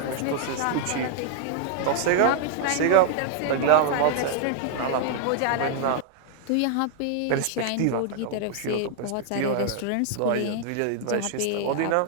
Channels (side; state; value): both; different; correlation 0.00